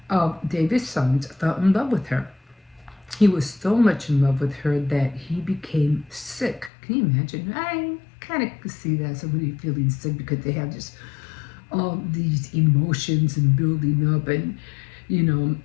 of David's sons, fell in love with her. He was so much in love with her that he became sick. Can you imagine? I kind of see that, somebody feeling sick because they have just all these emotions and building up, and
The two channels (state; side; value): drops out; right; at 6.7 s